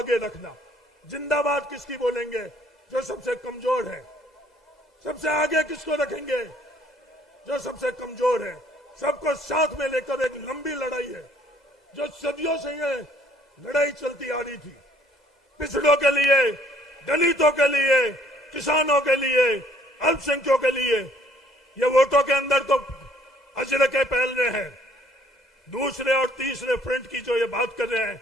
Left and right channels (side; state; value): both; normal; correlation 0.61